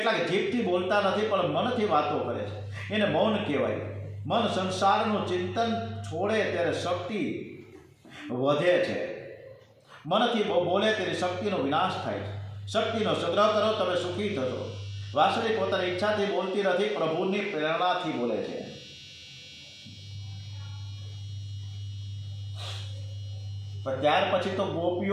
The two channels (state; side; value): identical; both; correlation 1.00